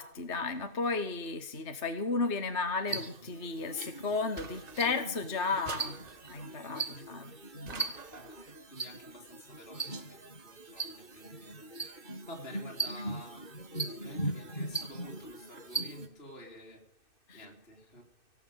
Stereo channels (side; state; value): right; late; 2.6 ms